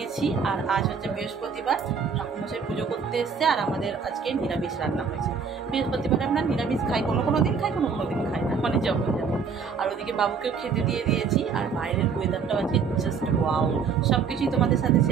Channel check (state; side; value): quieter; left; 5.8 dB